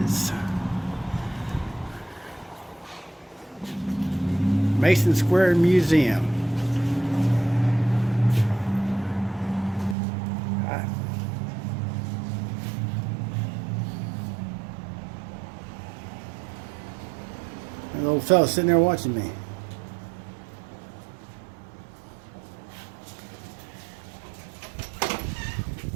Mason Square Museum. An old fella sitting there watching me.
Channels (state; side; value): drops out; left; at 10.0 s